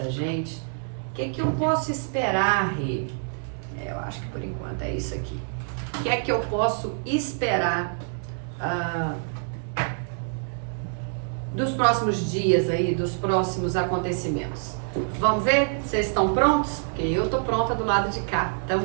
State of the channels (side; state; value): left; silent; 61 dB below the other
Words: gente? O que é que eu posso esperar, Rê? Eu acho que por enquanto é isso aqui. O que é que eu posso esperar dos próximos dias aí, dos próximos acontecimentos? Vamos ver? Vocês estão prontos? Porque eu tô pronta do lado de cá